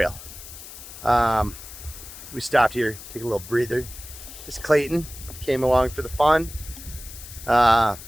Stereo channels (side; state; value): left; noise; hiss, 14 dB below the sound